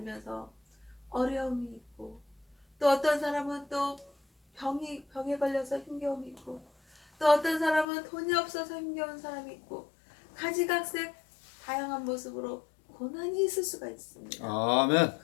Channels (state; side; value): drops out; right; at 7.9 s